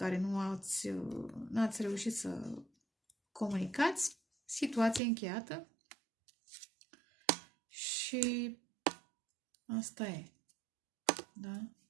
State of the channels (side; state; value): left; drops out; at 5.0 s